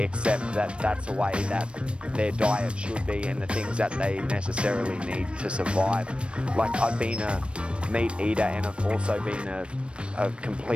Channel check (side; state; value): left; late; 0.058 ms